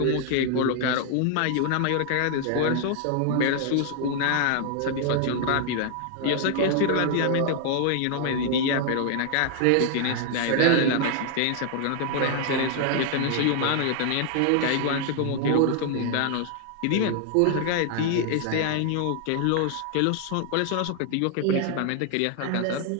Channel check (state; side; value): different; both; correlation 0.00